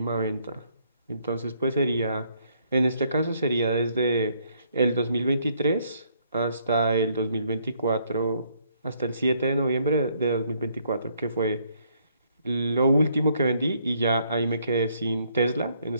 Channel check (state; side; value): inverted; both; correlation -0.68